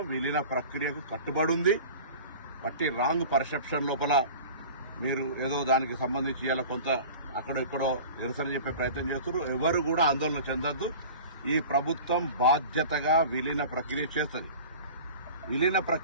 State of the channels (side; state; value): both; inverted; correlation -0.39